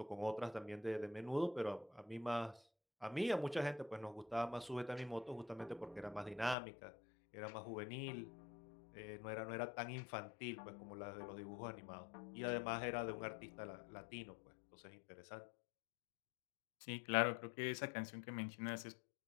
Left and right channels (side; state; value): right; drops out; at 6.6 s